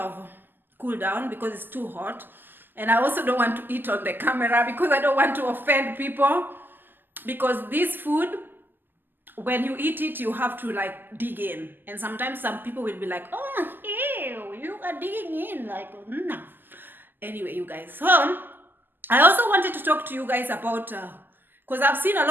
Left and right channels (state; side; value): late; left; 0.091 ms